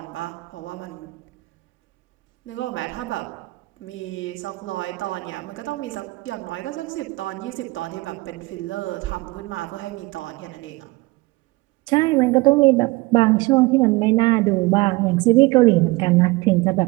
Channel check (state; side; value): quieter; left; 22.3 dB